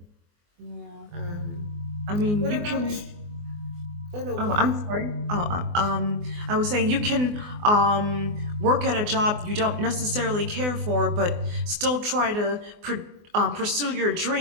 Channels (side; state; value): left; late; 24 ms